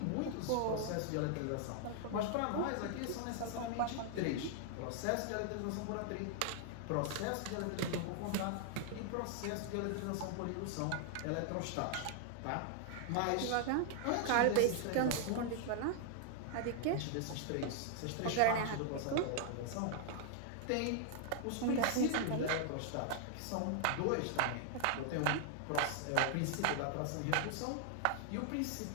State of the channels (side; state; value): both; different; correlation 0.00